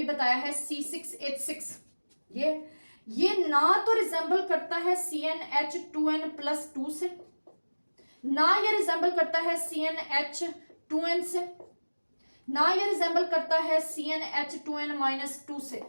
बताया है, C6H6। ये ना तो रिजेंबल करता है CnH2n+2 से, ना ये रिजेंबल करता है CnH2n से, ना ये रिजेंबल करता है CnH2n-2 से,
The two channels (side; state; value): both; inverted; correlation -1.00